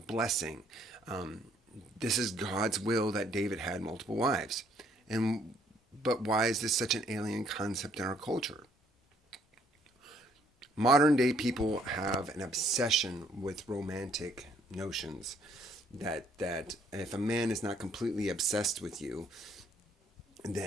This is God's will that David had multiple wives. But why is this such an alien concept in our culture? Modern day people have an obsession with romantic notions that if a man is not completely obsessed with you,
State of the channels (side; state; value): both; normal; correlation 0.65